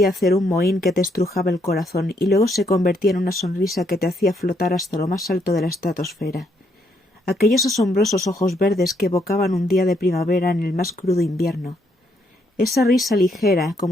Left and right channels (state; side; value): normal; both; correlation 0.73